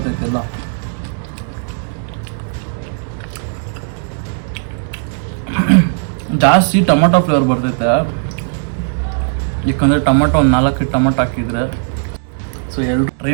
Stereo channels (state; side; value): silent; left; digital silence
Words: ಜಾಸ್ತಿ ಟೊಮೊಟೊ ಫ್ಲೇವರ್ ಬರ್ತೈತೆ, ಯಾಕಂದರೆ ಟೊಮೊಟೊ ಒಂದು 4 ಟೊಮೊಟೊ ಹಾಕಿದರೆ. ಸೊ ಎಲ್ಲರೂ ಟ್ರೈ